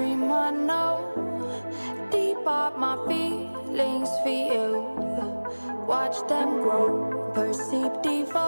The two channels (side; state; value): both; inverted; correlation -1.00